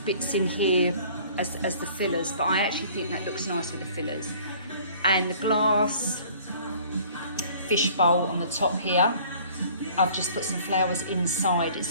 bits in here as the fillers, but I actually think that looks nice with the fillers. And the glass fishbowl on the top here, I've just put some flowers inside it.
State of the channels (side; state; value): both; inverted; correlation -0.52